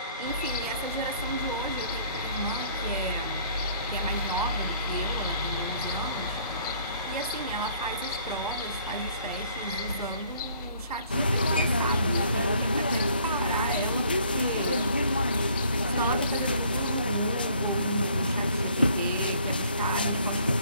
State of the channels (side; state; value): both; inverted; correlation -0.60